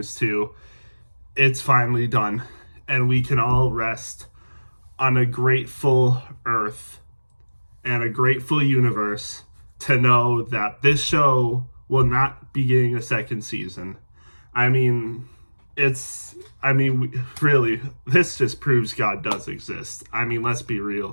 to, it's finally done. And we can all rest on a grateful earth and a grateful universe to know that this show will not be getting a second season. I mean, really, this just proves God does exist. I mean, let's be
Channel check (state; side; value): inverted; both; correlation -1.00